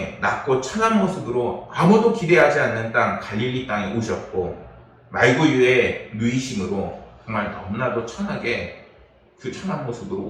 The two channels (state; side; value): identical; both; correlation 1.00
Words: 낮고 천한 모습으로 아무도 기대하지 않는 땅 갈릴리 땅에 오셨고, 말구유의 누이심으로 정말 너무나도 천하게 그 천한 모습으로